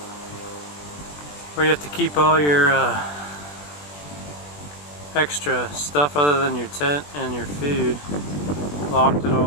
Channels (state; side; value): late; right; 20 ms